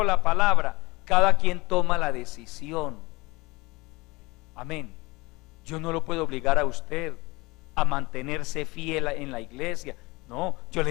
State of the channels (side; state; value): right; quieter; 23.1 dB